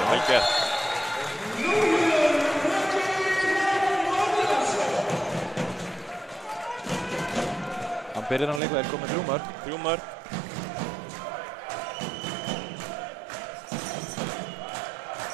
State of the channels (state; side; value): drops out; left; at 8.6 s